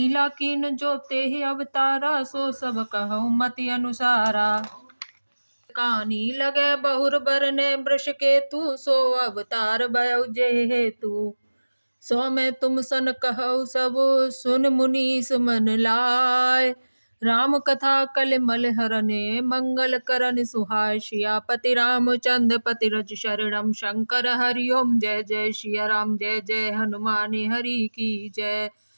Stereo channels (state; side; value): inverted; both; correlation -1.00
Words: कीन जो तेहि अवतारा, सो सब कहूँ मति अनुसारा। कानी लगे बहुर बरने वृष केतु, सो अवतार भयउ जेहि हेतु। सो मैं तुम सन कहु सब, सुन मुनीस मन लाय। राम कथा कलिमल हरने, मंगल करन सुहाय। सियापति रामचंद्र पति रज शरणम, शंकर हरि ओम जय जय। सिया राम जय जय, हनुमान हरि की जय।